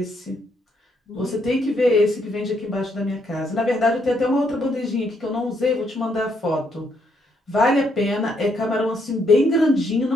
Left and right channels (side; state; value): both; normal; correlation 0.74